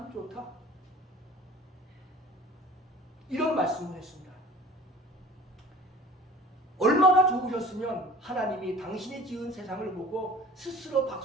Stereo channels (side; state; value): both; normal; correlation 0.45